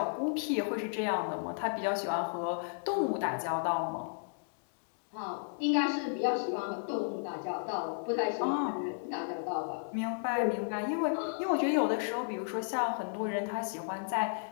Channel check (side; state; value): right; silent; digital silence